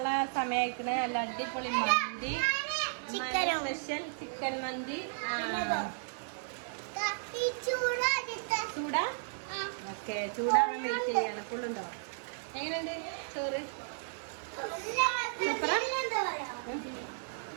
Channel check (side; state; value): left; silent; digital silence